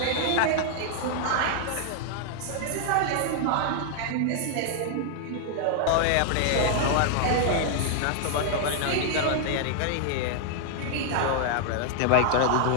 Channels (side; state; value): both; different; correlation -0.01